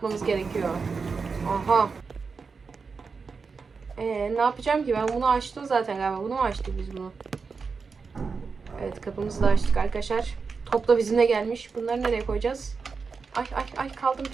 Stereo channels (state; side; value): quieter; left; 5.0 dB